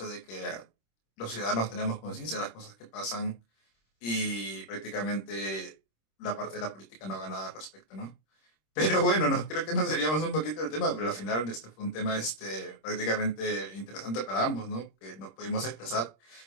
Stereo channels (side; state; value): right; late; 26 ms